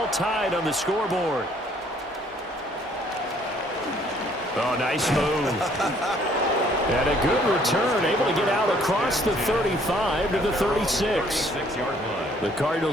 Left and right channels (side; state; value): both; normal; correlation 0.62